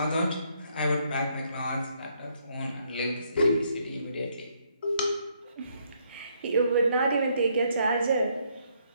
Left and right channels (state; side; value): inverted; both; correlation -0.71